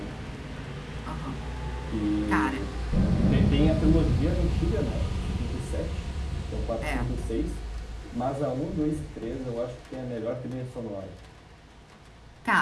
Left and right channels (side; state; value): both; identical; correlation 1.00